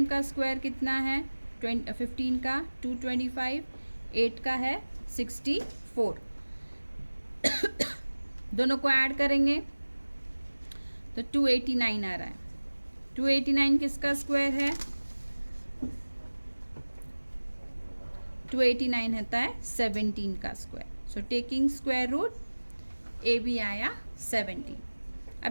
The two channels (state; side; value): inverted; both; correlation -1.00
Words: का स्क्वायर कितना है 15 का 225, 8 का है 64. दोनों को ऐड करेंगे तो 289 आ रहा है. 289 किसका स्क्वायर है, 289 होता है 17 का square. So taking square root AB आया 17.